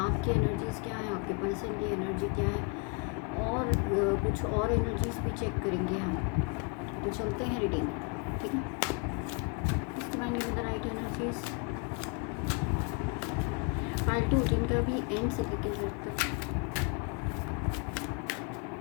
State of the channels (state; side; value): quieter; right; 33.5 dB